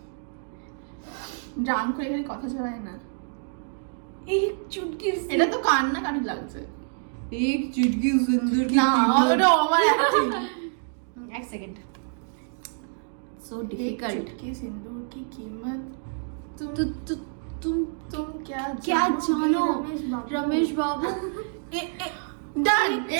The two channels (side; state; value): left; silent; digital silence